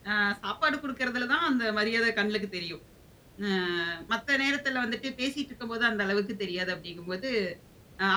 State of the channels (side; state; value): both; identical; correlation 1.00